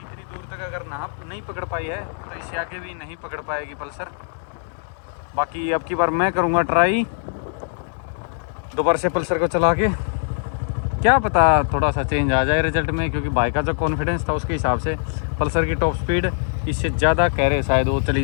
दूर तक अगर नाप नहीं पकड़ पाई है तो इससे आगे भी नहीं पकड़ पाएगी पल्सर। बाकी अब की बार मैं करूँगा ट्राई दोबारा से पल्सर को चला के, क्या पता थोड़ा सा चेंज आ जाए रिजल्ट में, क्योंकि बाइक का जो कॉन्फिडेंस था उसके हिसाब से पल्सर की टॉप स्पीड इससे ज़्यादा कह रहे शायद वो चली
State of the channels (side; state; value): right; silent; digital silence